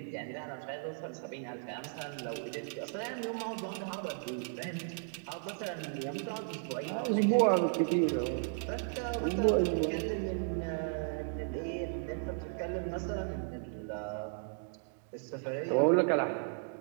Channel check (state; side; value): silent; left; digital silence